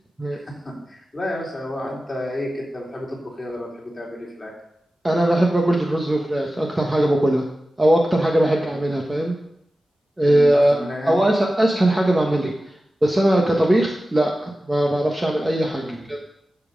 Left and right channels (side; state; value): both; normal; correlation 0.95